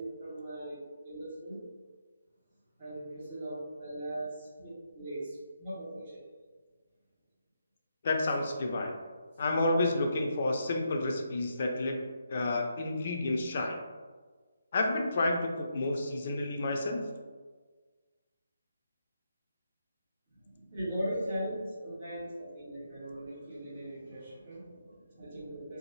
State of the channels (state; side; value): inverted; both; correlation -0.80